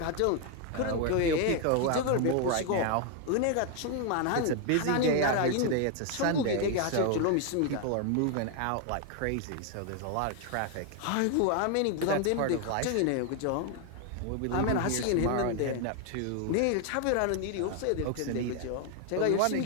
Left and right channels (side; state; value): both; different; correlation 0.01